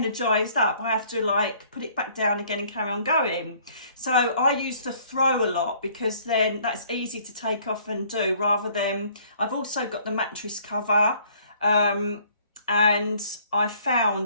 up, I have to put it back down again and carry on going. So I use the throw a lot because then that's easy to take off and do rather than, I've also got the mattress cover. And I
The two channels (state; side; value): inverted; both; correlation -0.58